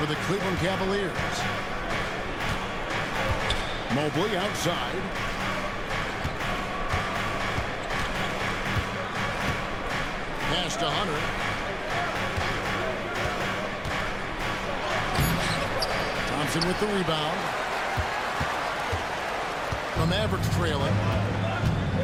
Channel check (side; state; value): both; identical; correlation 1.00